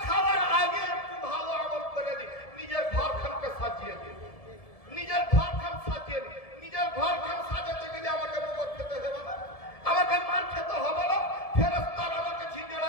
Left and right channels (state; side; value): late; right; 1.7 ms